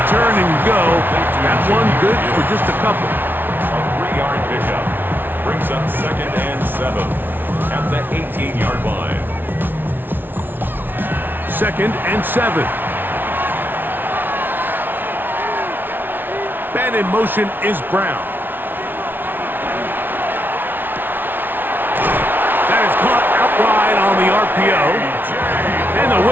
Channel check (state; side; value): late; left; 0.095 ms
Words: turn and go. That one good for just a couple. A 3-yard pickup brings up 2nd and 7 at the 18-yard line. 2nd and 7. Man in motion is Brown. That is caught out wide on the RPO. And they'll